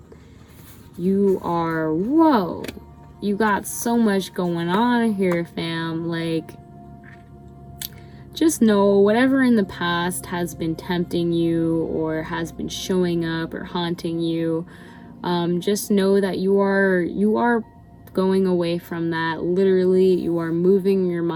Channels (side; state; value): both; identical; correlation 1.00